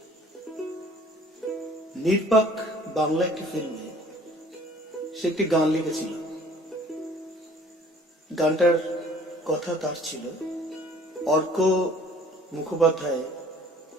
নির্বাক বাংলা একটি ফিল্মে সে একটি গান লিখেছিল। গানটার কথা তার ছিল, অর্ক মুখোপাধ্যায়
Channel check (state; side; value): normal; both; correlation 0.53